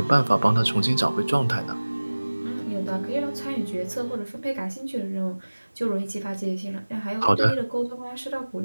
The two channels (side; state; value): both; inverted; correlation -1.00